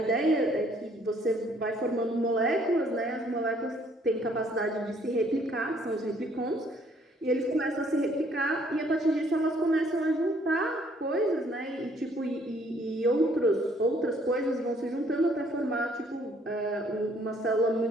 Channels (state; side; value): normal; both; correlation 0.63